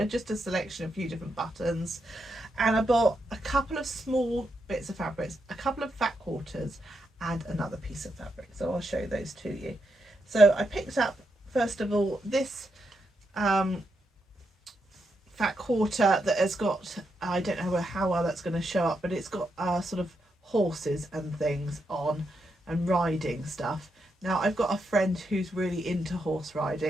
just a selection of a few different buttons. And I bought a couple of small bits of fabrics, a couple of fat quarters and another piece of fabric. So I'll show those to you. So I picked up, first of all, this fat quarter that has got, I don't know how well that's going to show up, but it's got sort of horses and things on and riding stuff. Now I've got a friend who's really into horse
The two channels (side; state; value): both; normal; correlation 0.82